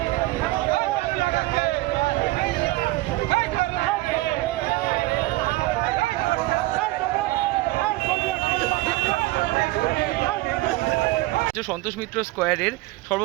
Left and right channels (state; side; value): quieter; left; 19.4 dB